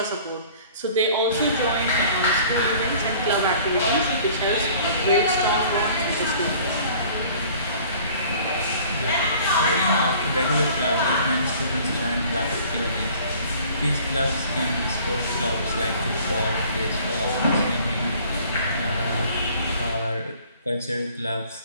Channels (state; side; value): inverted; both; correlation -0.51